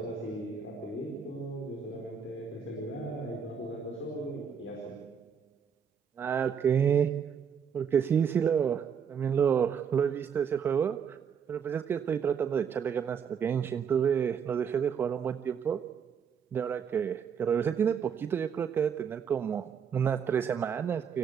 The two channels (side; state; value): left; quieter; 7.2 dB